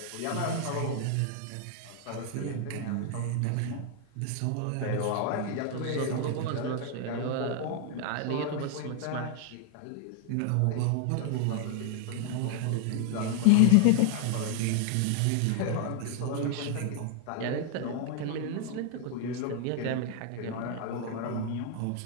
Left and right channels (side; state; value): both; different; correlation 0.00